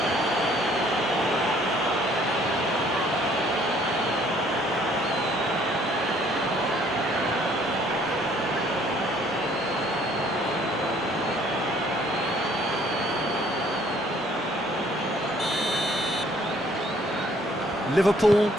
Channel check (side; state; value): both; normal; correlation 0.60